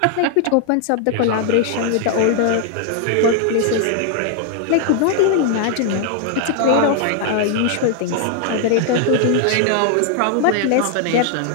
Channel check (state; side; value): different; both; correlation 0.00